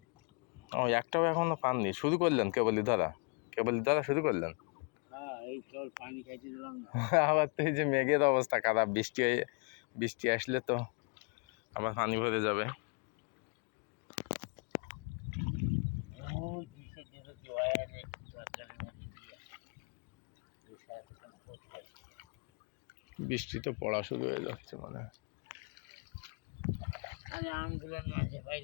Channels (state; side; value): quieter; right; 38.2 dB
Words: ও একটাও এখনো পাননি, শুরু করলেন কেবলই ধরা শুরু করলেন। এই কেবল পানি খাইতে দিলাম না। আবার তো এই যে মেঘের অবস্থা খারাপ, বৃষ্টি আসলে তো আবার পানি ভরে যাবে। বৃষ্টি তো পড়া শুরু হয়ে যাচ্ছে মানে। আমগুলো